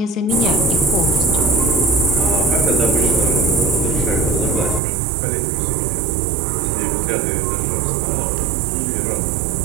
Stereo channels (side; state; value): left; drops out; at 4.8 s